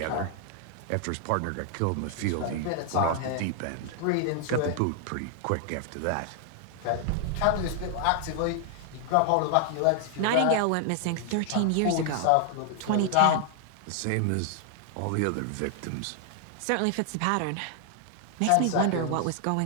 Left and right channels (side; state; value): both; different; correlation 0.00